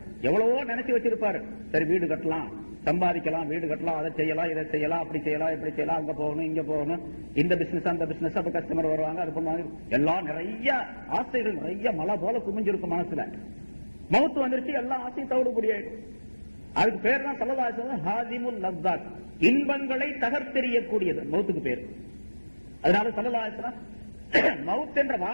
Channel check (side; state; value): both; inverted; correlation -1.00